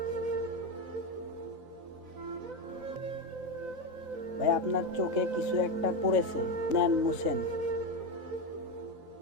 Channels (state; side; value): late; left; 4.0 ms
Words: ভাই আপনার চোখে কিছু একটা পড়েছে, নেন মুছেন।